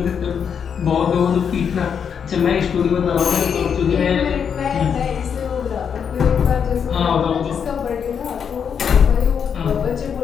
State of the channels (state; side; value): quieter; right; 7.3 dB